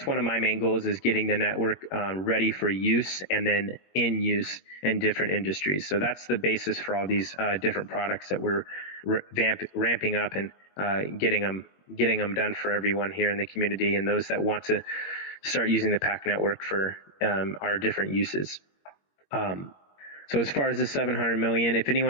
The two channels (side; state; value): right; late; 21 ms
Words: one of my main goals, is getting the network ready for use and then in use in different industries. So that's the basis for all these different products that we're ramping up and getting them done for everyone here in the community and those that want to start using the PAC network for our different uses. So as far as the 700 million, if